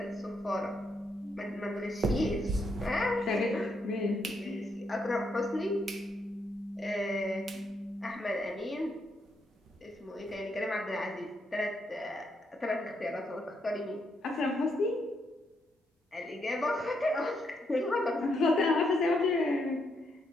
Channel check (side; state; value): both; normal; correlation 0.78